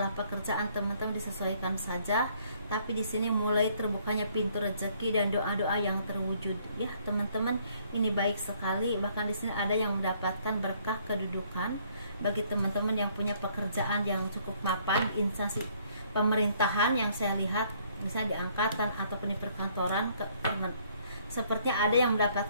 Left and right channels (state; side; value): inverted; both; correlation -0.64